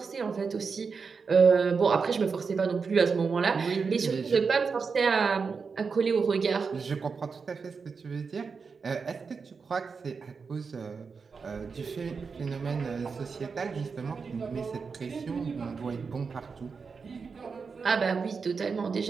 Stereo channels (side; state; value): left; quieter; 5.2 dB